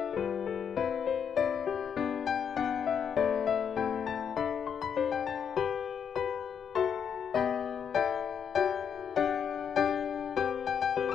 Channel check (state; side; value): quieter; right; 7.6 dB